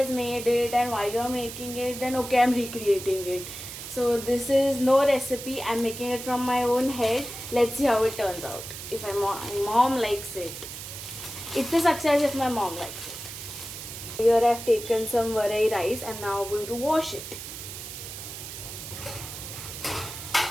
made it and why you are making it, then okay, I'm recreating it. So this is no recipe. I'm making it from my own head. Let's see how it turns out. If my mom likes it, it's a success if my mom likes it. Here I've taken some varai rice. I'm now going to wash it.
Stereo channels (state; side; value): noise; right; hiss, 10 dB below the sound